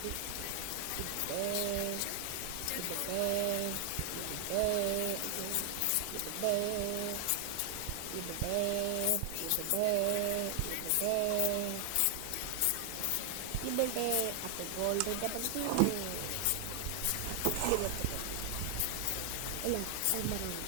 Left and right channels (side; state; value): both; different; correlation 0.00